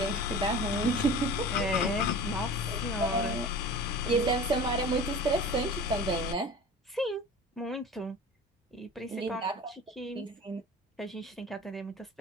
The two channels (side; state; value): both; normal; correlation 0.38